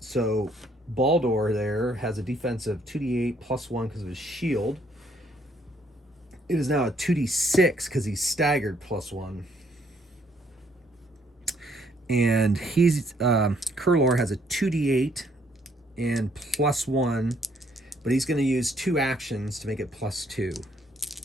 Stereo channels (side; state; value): both; normal; correlation 0.67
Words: Baldur there has a defensive 2d8 +1 because of his shield. It is now a 2d6 because he's staggered +1. And he's Kurlor has a 2d8 and +1, but he's going to use 2 actions to make it +2.